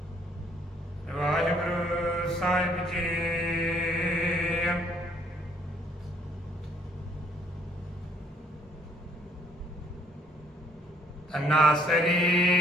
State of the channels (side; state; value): both; normal; correlation 0.64